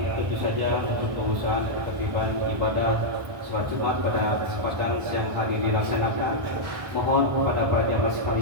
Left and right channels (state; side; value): late; left; 1.2 ms